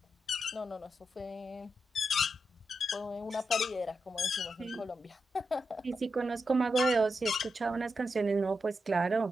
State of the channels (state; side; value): normal; both; correlation 0.86